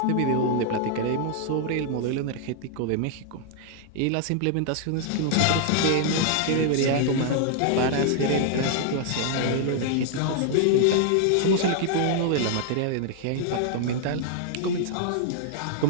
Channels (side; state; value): both; different; correlation -0.01